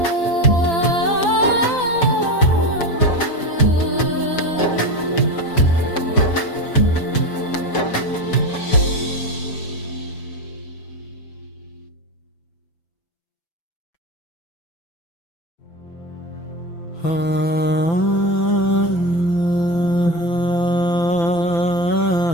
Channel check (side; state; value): right; late; 5.9 ms